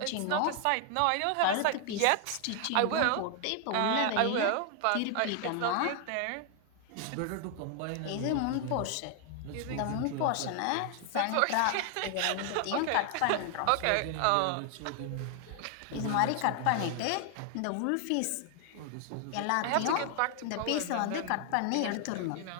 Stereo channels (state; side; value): different; both; correlation 0.00